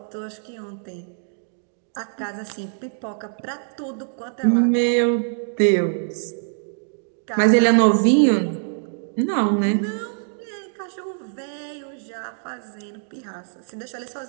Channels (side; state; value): left; silent; digital silence